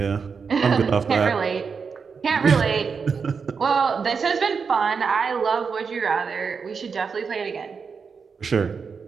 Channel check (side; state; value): left; quieter; 5.6 dB